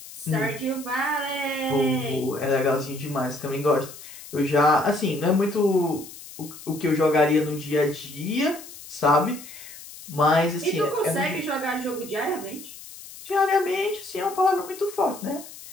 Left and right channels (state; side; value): noise; left; hiss, 16 dB below the sound